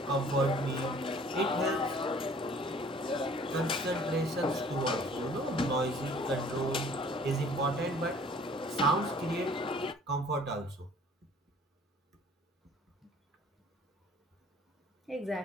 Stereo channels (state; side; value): normal; both; correlation 0.53